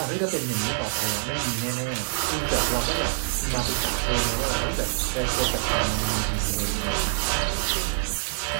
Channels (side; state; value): left; silent; 61 dB below the other